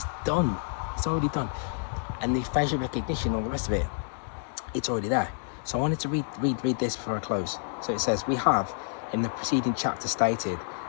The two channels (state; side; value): silent; right; 59 dB below the other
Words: done. It's already done. And the facial recognition, all the rest of it, it's already there. So I wanted to read this before I close. So it says, we have in the preceding chapter stated